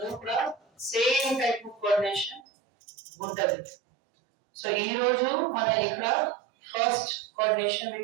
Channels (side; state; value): left; drops out; at 2.4 s